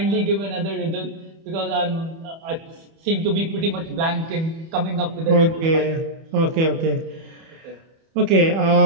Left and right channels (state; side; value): late; left; 31 ms